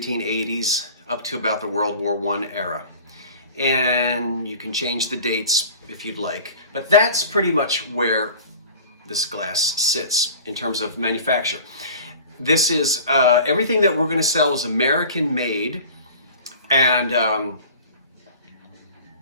up to about the World War I era. And you can change the dates if you'd like. But that's pretty much where this glass sits in terms of manufacture. This is, everything that we're going to sell is American made, and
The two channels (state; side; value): inverted; both; correlation -0.41